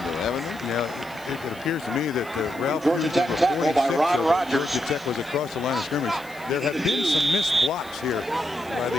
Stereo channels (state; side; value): noise; left; hiss, 23 dB below the sound